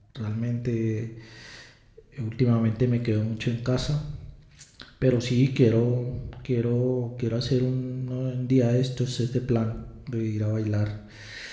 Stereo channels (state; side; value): identical; both; correlation 1.00